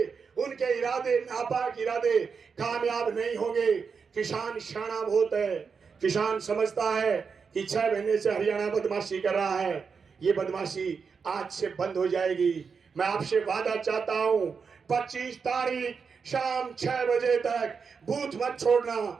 उनके इरादे नापाक इरादे कामयाब नहीं होंगे। किसान शाना बहुत है, किसान समझता है कि 6 महीने से हरियाणा बदमाशी कर रहा है, ये बदमाशी आज से बंद हो जाएगी। मैं आपसे वादा चाहता हूं 25 तारीख शाम 6 बजे तक बूथ मत छोड़ना,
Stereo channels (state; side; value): quieter; left; 5.6 dB